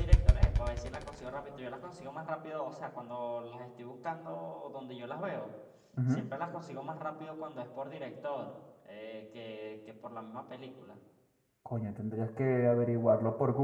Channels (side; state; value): both; identical; correlation 1.00